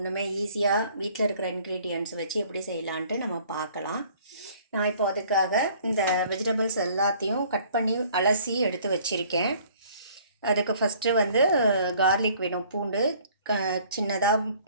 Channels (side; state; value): both; inverted; correlation -0.55